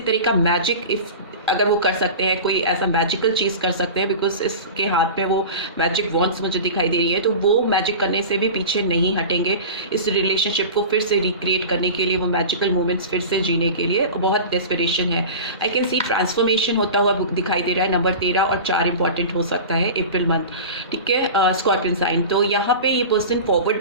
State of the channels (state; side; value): inverted; both; correlation -0.32